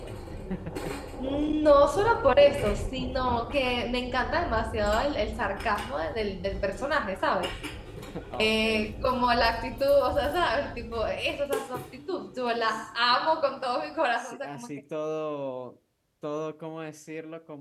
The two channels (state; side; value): identical; both; correlation 1.00